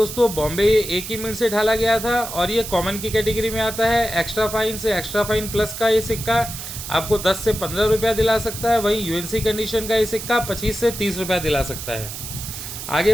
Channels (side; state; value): right; noise; hiss, 9 dB below the sound